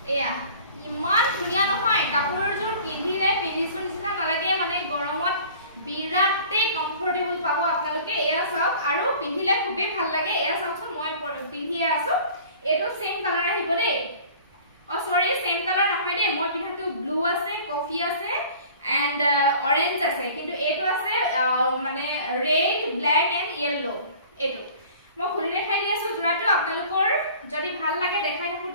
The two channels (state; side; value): inverted; both; correlation -0.46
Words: এয়া ইমান ধুনিয়া নহয় কাপোৰৰ জোৰ পিন্ধিলে পিন্ধিছো নিচিনা নালাগে, মানে গৰমত বিৰাটে কমফৰ্টেবল পাব আপোনালোকে। এয়া চাওক আৰু পিন্ধিলে খুবেই ভাল লাগে। এয়া চাওকচোন মই পিন্ধিয়ে আছো, এটো সেম কালাৰ আহিব দেই। সৰি সেম কালাৰ নহয় দেই, মই পিন্ধাটো ব্লু আছে, কফি আছে এন্ড অৰেঞ্জ আছে, কিন্তু এটো আছে মানে ৰেড ব্ল্যাক এন্ড ইয়েলো। এটো মই খুলি দেখাই দি আছো জোৰাটো। আপোনালোকৰ যদি ভাল লাগে দেখাই